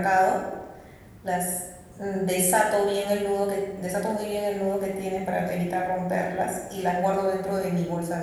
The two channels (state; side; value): identical; both; correlation 1.00